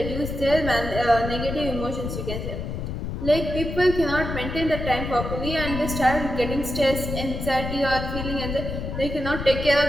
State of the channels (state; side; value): noise; left; rumble, 5 dB below the sound